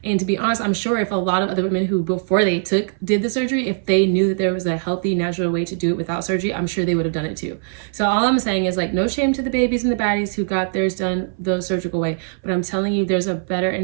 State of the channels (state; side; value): silent; left; 59 dB below the other